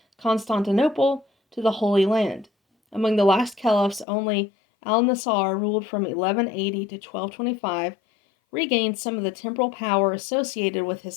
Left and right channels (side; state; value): right; drops out; at 4.0 s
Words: Constantinople to the Holy Land. Among the last caliphs, only Al-Nasar ruled from 1180 to 1225, regained some of the temporal power associated with his